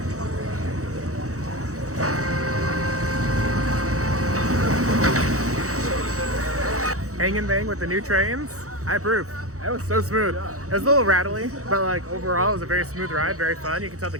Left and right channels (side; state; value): left; late; 0.65 ms